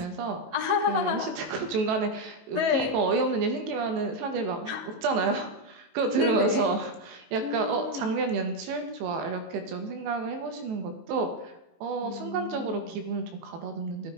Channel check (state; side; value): late; left; 18 ms